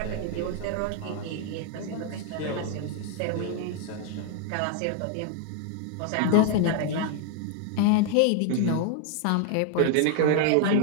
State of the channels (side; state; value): both; different; correlation 0.00